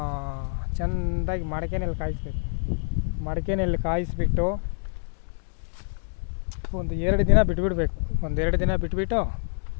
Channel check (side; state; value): right; silent; digital silence